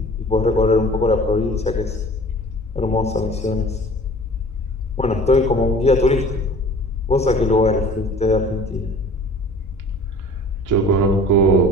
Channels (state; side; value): normal; both; correlation 0.46